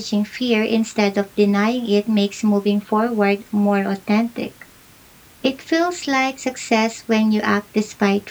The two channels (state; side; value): identical; both; correlation 1.00